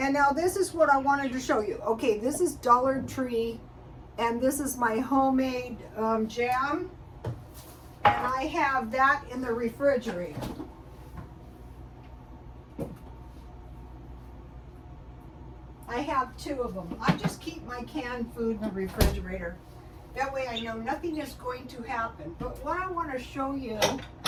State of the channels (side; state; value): both; identical; correlation 1.00